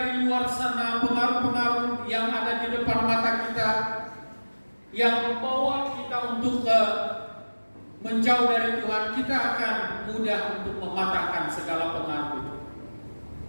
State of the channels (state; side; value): inverted; both; correlation -1.00